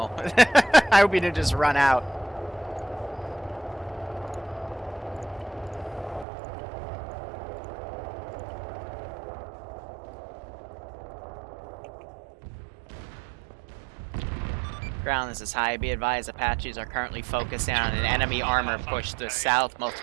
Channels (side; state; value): left; drops out; at 6.2 s